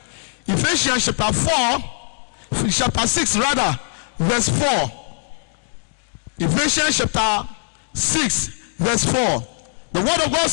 Ephesians chapter 6 verse 4. Ephesians chapter 6 verse 4. The word of God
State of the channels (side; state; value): right; silent; digital silence